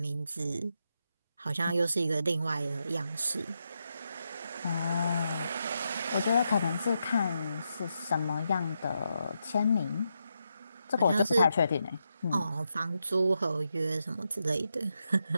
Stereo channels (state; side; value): inverted; both; correlation -0.84